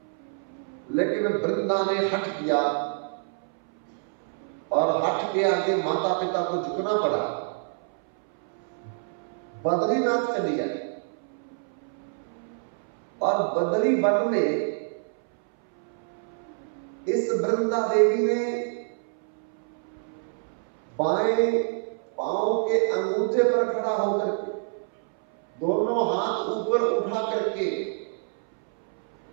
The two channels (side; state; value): left; silent; 60 dB below the other